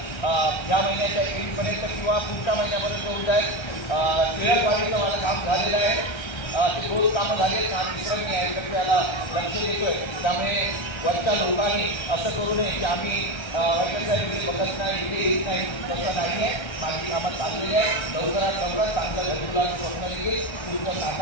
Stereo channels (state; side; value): late; right; 1.3 ms